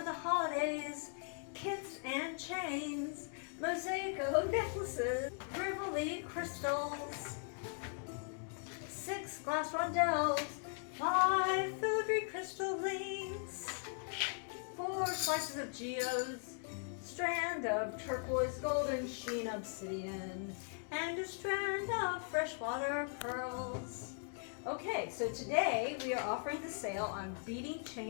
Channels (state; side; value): silent; right; 52 dB below the other